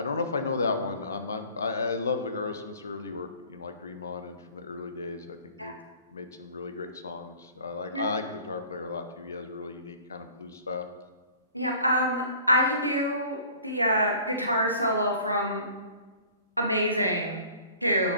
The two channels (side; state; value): both; inverted; correlation -0.49